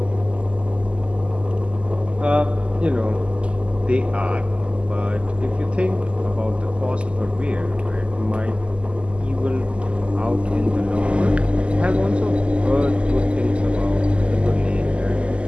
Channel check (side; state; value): left; late; 0.054 ms